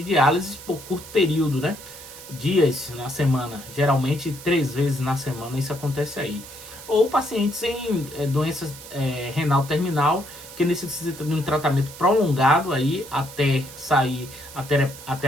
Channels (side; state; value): right; noise; hiss, 15 dB below the sound